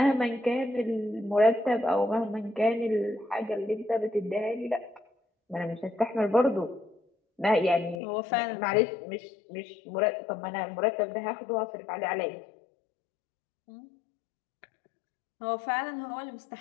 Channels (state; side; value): drops out; right; at 8.0 s